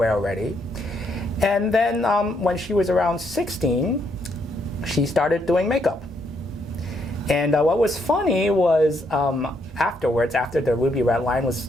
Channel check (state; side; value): normal; both; correlation 0.74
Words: already. And then when she was around 16, she started doing makeup. And what was funny was afterwards, after the Ruby Red line was